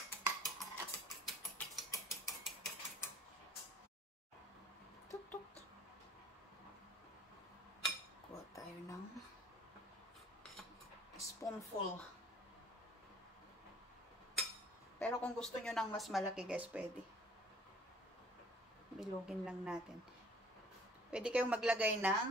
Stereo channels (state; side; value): normal; both; correlation 0.54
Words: Tuk-tuk. Kuha tayo ng spoonful. Pero kung gusto nyo ng mas malaki guys, pwede. Bilugin lang natin. Pwede kayong maglagay